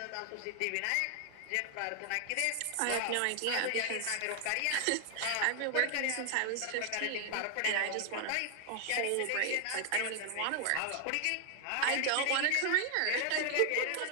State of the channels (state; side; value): different; both; correlation 0.00